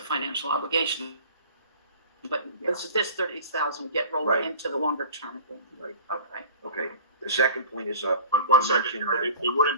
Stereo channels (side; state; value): both; inverted; correlation -0.42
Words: financial obligation, but this 30,000 would get rolled Right. into the longer-term agreement. Right. Okay. Okay. The second point is, One you second, mentioned it wouldn't